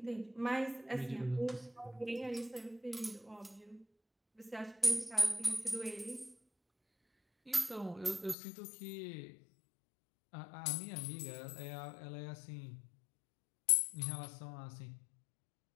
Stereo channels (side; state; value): right; drops out; at 8.3 s